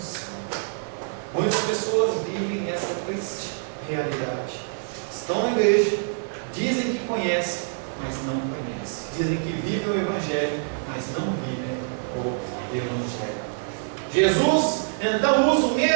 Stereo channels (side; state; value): left; silent; digital silence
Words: Muitas pessoas vivem essa triste realidade. Estão na igreja, dizem que conhecem, mas não conhecem. Dizem que vivem o Evangelho, mas não vivem o Evangelho. Jesus então usa o